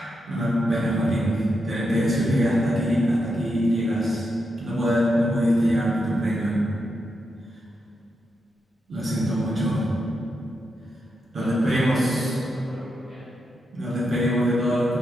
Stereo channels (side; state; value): both; normal; correlation 0.84